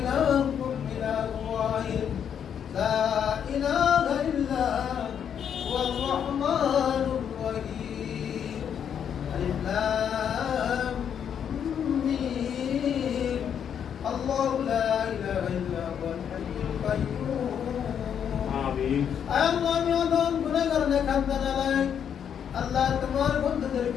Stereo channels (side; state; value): right; quieter; 8.3 dB